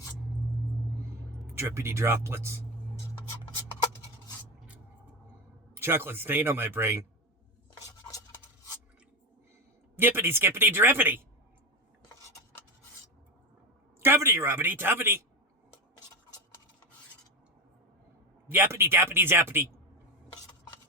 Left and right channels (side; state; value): both; normal; correlation 0.17